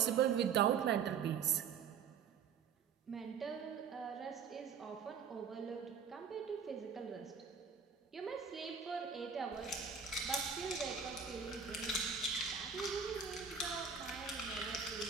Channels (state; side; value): quieter; left; 6.4 dB